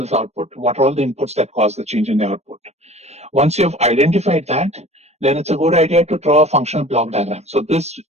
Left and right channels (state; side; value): late; left; 0.31 ms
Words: this output? What are all the inputs that cause the change in the output? Once you've identified that, then it's a good idea to draw a functional block diagram. So this